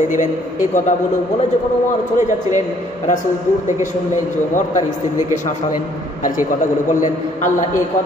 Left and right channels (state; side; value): normal; both; correlation 0.62